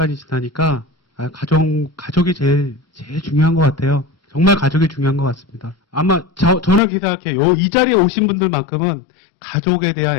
지나니까 가족이 제일 중요한 것 같아요. 정말 가족이 중요한 것 같습니다. 아마 저는 그렇게 생각해요. 이 자리에 오신 분들만큼은 가족에 대한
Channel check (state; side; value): drops out; right; at 6.8 s